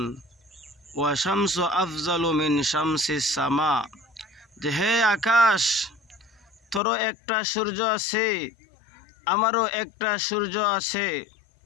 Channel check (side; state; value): right; drops out; at 6.8 s